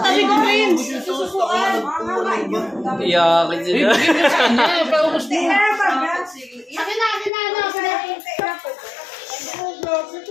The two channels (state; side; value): drops out; right; at 7.3 s